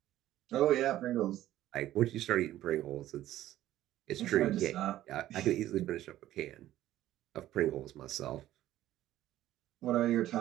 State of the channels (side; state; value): left; quieter; 13.8 dB